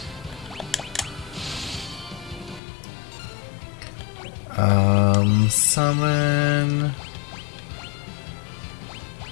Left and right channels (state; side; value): drops out; right; at 2.6 s